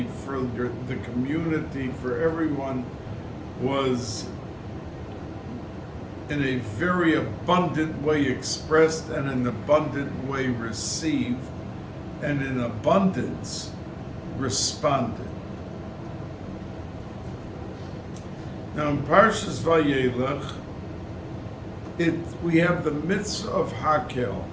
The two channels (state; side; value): identical; both; correlation 1.00